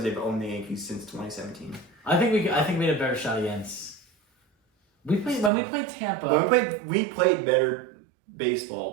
they've owned the Yankees since 2017. I think we had a better shot against. When we played Tampa. When we played better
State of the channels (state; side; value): drops out; left; at 5.5 s